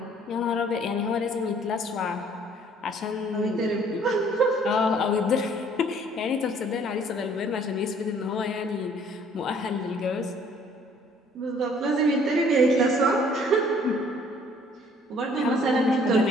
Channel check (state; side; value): normal; both; correlation 0.58